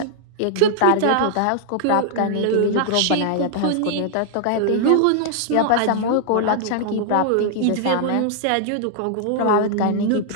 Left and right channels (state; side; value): different; both; correlation -0.01